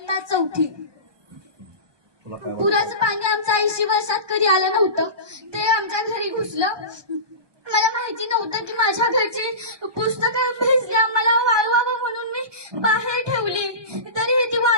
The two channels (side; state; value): left; late; 1.2 ms